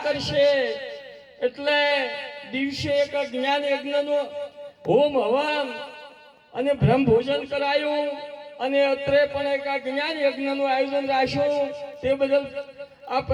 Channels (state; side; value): identical; both; correlation 1.00